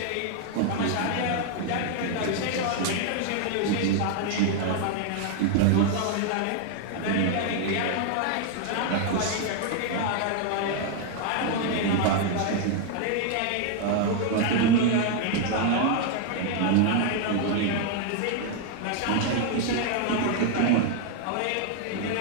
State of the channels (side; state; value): both; different; correlation 0.00